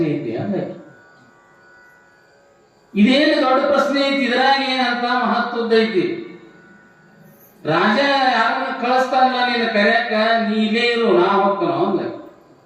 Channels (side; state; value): both; identical; correlation 1.00